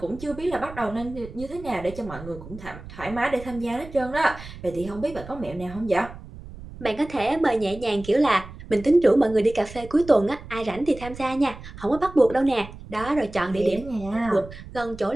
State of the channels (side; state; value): right; noise; rumble, 15 dB below the sound